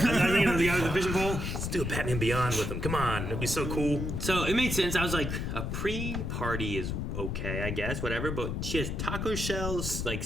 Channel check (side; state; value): left; noise; rumble, 3 dB below the sound